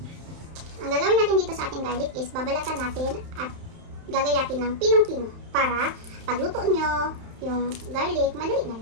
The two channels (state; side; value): late; left; 31 ms